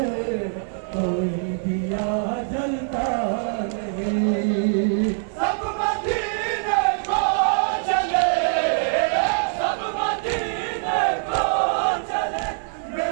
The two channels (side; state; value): left; silent; 56 dB below the other